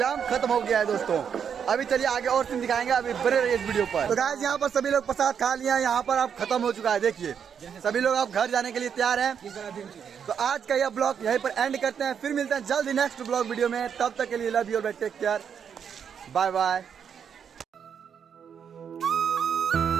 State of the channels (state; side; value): quieter; left; 7.5 dB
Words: खत्म हो गया है दोस्तों। अभी चलिए आगे और सीन दिखाएंगे, अभी बने रहिए इस वीडियो पर। तो गाइस यहाँ पर सभी लोग प्रसाद खा लिया, यहाँ पर अब खत्म हो चुका है। देखिए सभी लोग अब घर जाने के लिए तैयार हैं। तो आज का यह ब्लॉग यहीं पर एंड करते हैं, फिर मिलते हैं जल्द ही नेक्स्ट ब्लॉग वीडियो में। तब तक के लिए लव यू और टेक केयर, बाय बाय।